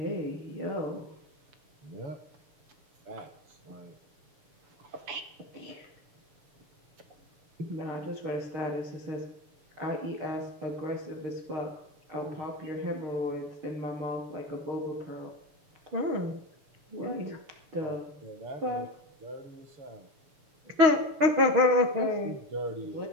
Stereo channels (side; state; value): left; late; 6.4 ms